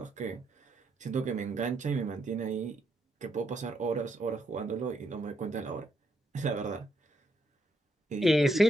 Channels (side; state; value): both; normal; correlation 0.77